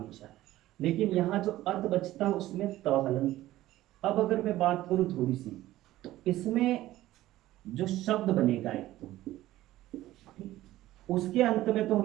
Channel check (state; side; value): quieter; left; 15.4 dB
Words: लेकिन यहाँ जो अत बचता है उसमें त हलंत। अब अगर मैं बात करूं थोड़ी सी, तो इसमें जो शब्द बनेगा एक तो, उसके अंत में तो